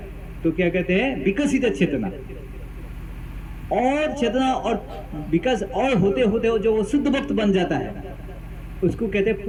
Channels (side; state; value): both; identical; correlation 1.00